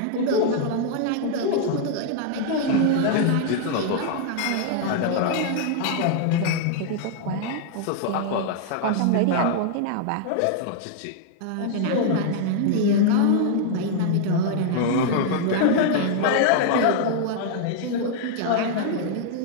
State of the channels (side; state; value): both; different; correlation 0.00